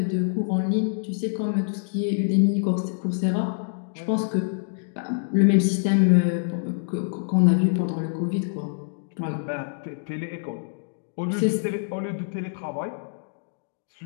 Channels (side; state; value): right; silent; digital silence